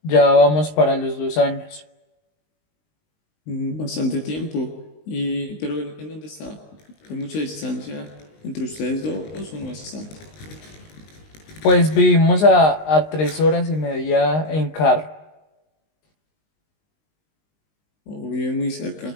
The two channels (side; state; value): right; late; 19 ms